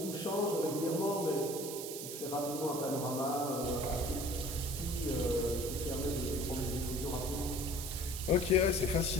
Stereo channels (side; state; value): right; noise; hiss, 7 dB below the sound